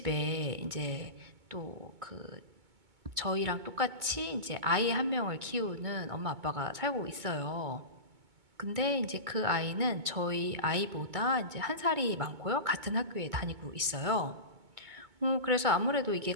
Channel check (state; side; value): late; left; 2.2 ms